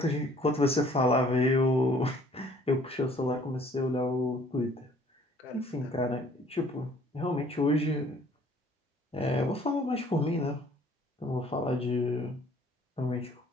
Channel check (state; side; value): normal; both; correlation 0.57